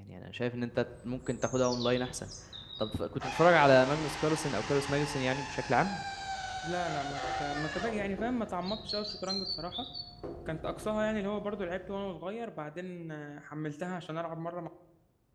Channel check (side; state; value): both; identical; correlation 1.00